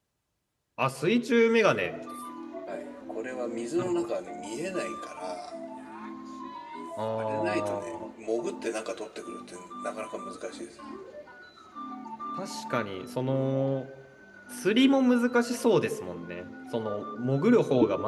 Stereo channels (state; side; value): identical; both; correlation 1.00